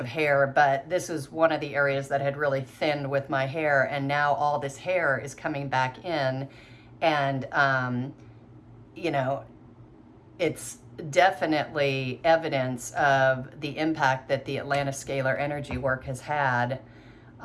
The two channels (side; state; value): both; identical; correlation 1.00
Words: hair, but this was one of the areas that had really thinned with my hair, and now all this hair is coming back in, and you know, it's definitely evidence of the impact that the Atlantis scalar energy work has had